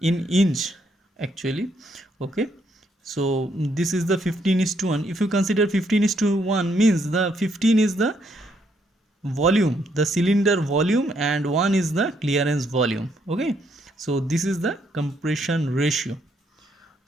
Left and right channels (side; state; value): both; normal; correlation 0.73